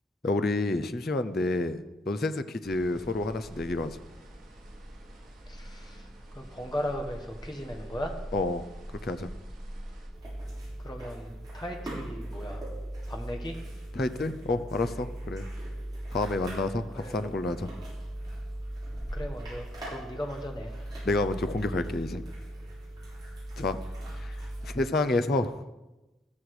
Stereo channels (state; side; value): normal; both; correlation 0.69